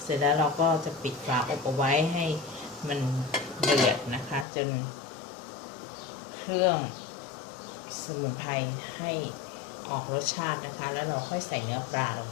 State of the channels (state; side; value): drops out; right; at 4.5 s